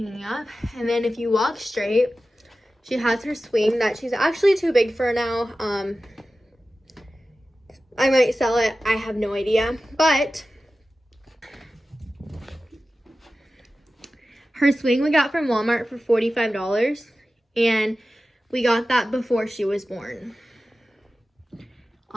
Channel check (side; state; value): both; normal; correlation 0.95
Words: up. And then if you walk straight, she has her swing that she's actually too big for now. I might sell it, I have no idea, but her swing we got from Walmart for $45, and we got that before she was born.